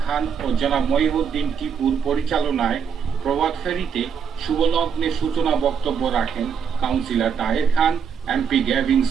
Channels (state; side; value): quieter; left; 7.0 dB